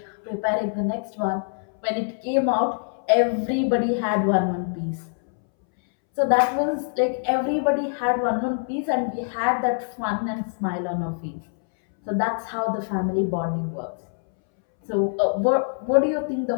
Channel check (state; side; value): silent; right; 62 dB below the other